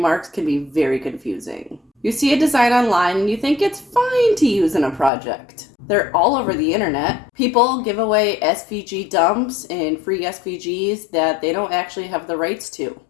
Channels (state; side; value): drops out; right; at 5.1 s